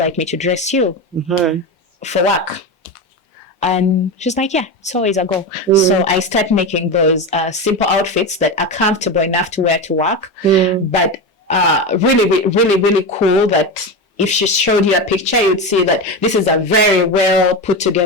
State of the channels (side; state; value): both; normal; correlation 0.19